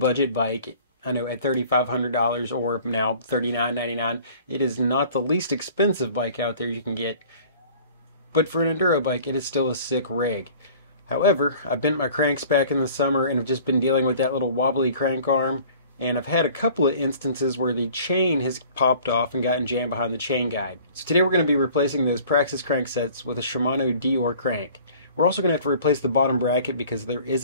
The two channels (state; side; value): inverted; both; correlation -0.49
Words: bike. I know at $3,500 or now $39.99, it is not the least expensive bike out there you can get. But for an enduro bike, it is still a sick rig. However, I bent my cranks back in the summer and have just been dealing with that little wobbly crank arm. And I've had a couple of instances where the chain has popped off and gotten jammed behind the chain guide. So today we're going to be replacing those Praxis cranksets with a Shimano Deore crank. We're also going to have to replace the bottom bracket because there is